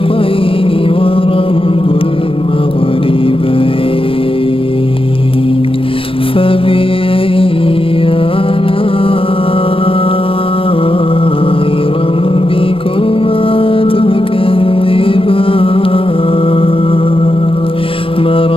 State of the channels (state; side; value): late; right; 0.26 ms